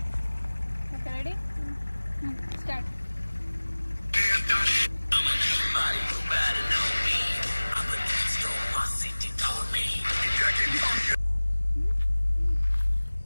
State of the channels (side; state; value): both; inverted; correlation -1.00